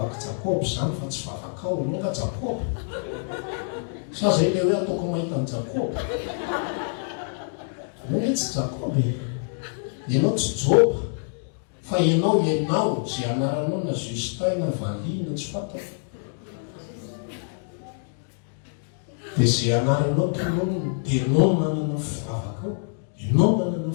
jakoby zany fa tsy vavaka ao anao ka jakoby sa zay le hoe ataoko mahita ny jakoby anao hoe tsy jakoby ianao tsy joba fa ianao zay anaranao na Justin na Vali na tsy fatako dia zay anaranao tonono dia ianao manana fivavaka ao ianao manana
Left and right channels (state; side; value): silent; right; digital silence